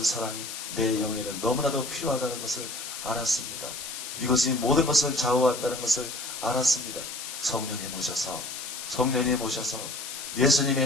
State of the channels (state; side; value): noise; left; hiss, 8 dB below the sound